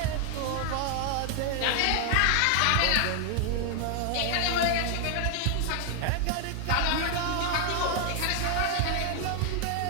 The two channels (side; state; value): both; different; correlation 0.00